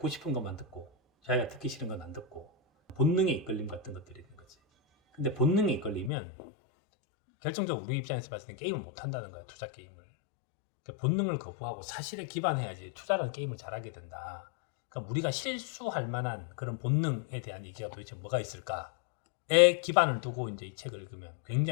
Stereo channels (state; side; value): drops out; right; at 6.1 s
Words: 싶은 것만 듣고 자기가 듣기 싫은 건 안 듣고, 본능의 이끌림 같은 것들이 있는 거지. 근데 본능에 이끌리면 결정적으로 우리 입장에서 봤을 때 게임을 못 한다는 거야, 투자 게임을. 그러니까 본능을 거부하고 사실에 기반해야지 투자라는 게임을 잘하게 된다. 그러니까 우리가 실수할 만한 그런 본능에 대한 얘기가 도대체 뭐가 있을까에 기반을 두고 이제 이 책을 읽으면